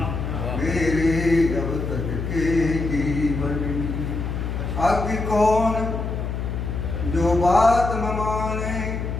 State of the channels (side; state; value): left; noise; hum, 3 dB below the sound